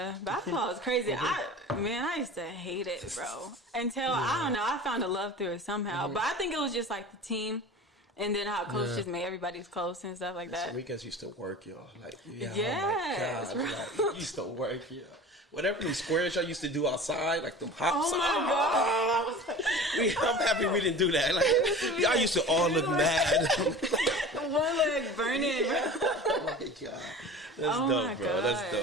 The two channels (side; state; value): both; normal; correlation 0.37